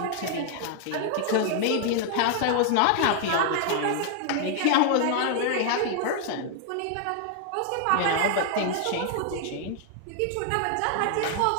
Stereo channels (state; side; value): different; both; correlation 0.00